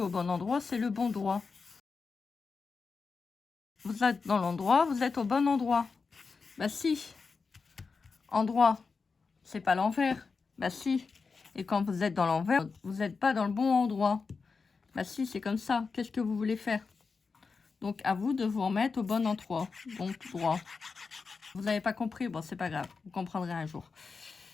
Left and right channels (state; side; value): quieter; right; 4.8 dB